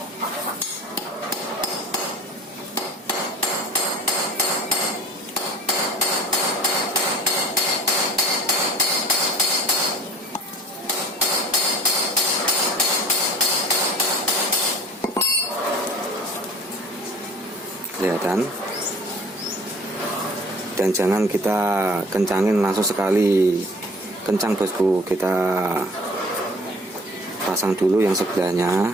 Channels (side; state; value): both; normal; correlation 0.46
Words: kelihatan. Dan jangan kita kencangin langsung sekali kencang bosku, kita pasang dulu yang